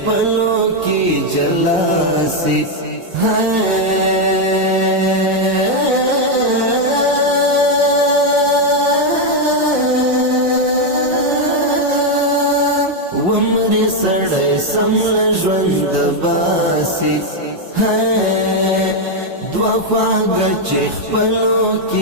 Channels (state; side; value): late; left; 5.6 ms